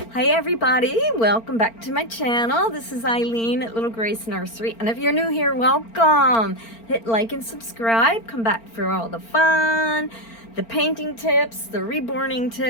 Hi everybody, welcome back to my channel. This is Eileen at Little Grace Nursery, and if you're new here, welcome. Hit like and subscribe. Come back for all the fun, the painting tips, the reborning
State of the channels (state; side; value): late; right; 4.4 ms